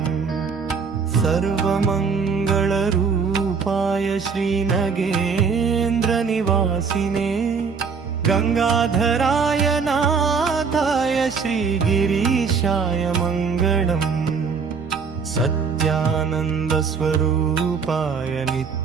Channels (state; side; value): quieter; left; 5.6 dB